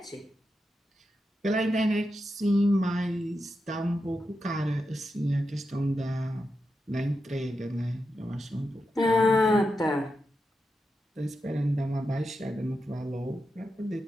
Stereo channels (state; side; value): normal; both; correlation 0.88